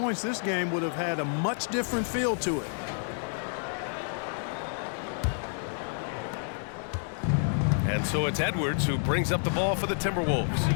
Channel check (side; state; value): right; silent; digital silence